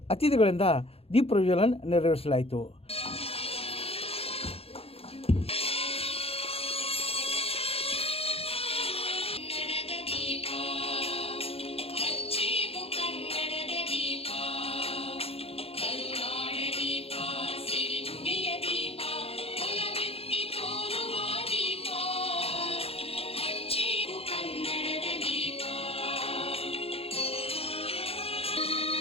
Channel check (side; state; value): right; late; 0.28 ms